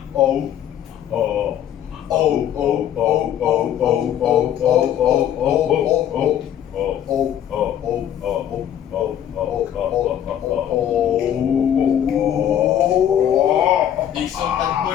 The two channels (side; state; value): right; quieter; 10.3 dB